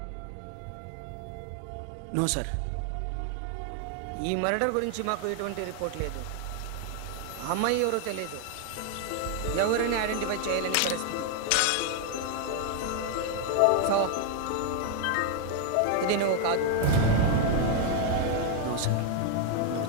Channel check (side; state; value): both; different; correlation 0.00